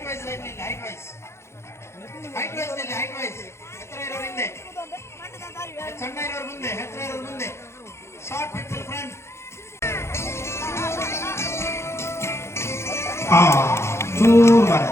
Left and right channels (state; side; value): late; right; 0.13 ms